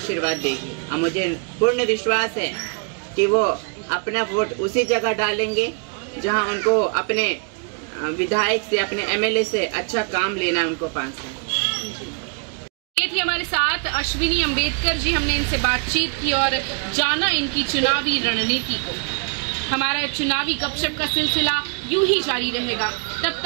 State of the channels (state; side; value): quieter; left; 39.8 dB